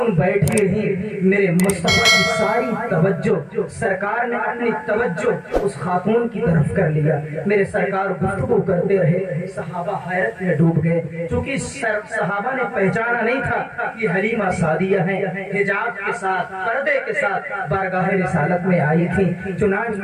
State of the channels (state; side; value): identical; both; correlation 1.00